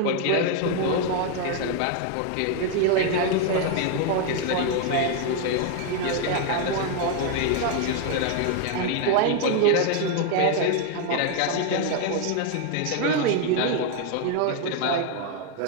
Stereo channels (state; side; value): different; both; correlation 0.01